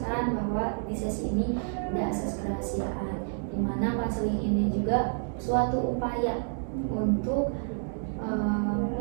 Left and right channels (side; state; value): left; silent; 59 dB below the other